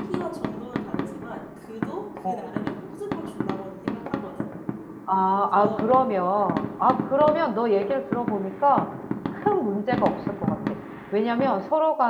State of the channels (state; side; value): identical; both; correlation 1.00